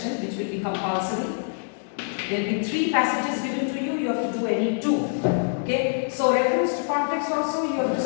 which will be compulsory. There will be 3 passages given to you, you have to do any 2. Okay, so reference to context also you have to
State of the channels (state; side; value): silent; right; digital silence